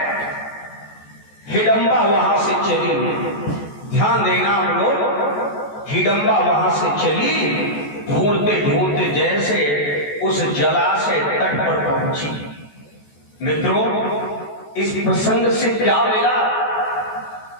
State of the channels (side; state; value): right; late; 14 ms